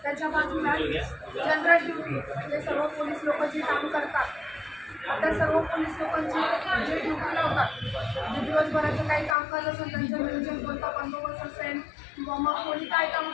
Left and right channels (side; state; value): right; drops out; at 9.3 s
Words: त्याच्या बाजूला जनरल ड्युटी म्हणजे सर्व पोलीस लोक जे काम करतात त्या सर्व पोलीस लोकांची जे ड्युटी लावतात जे दिवसभराचं काही कामकाज असेल त्यांचं नियोजन कोणता बंदोबस्त असेल किंवा मग कोणी काय काम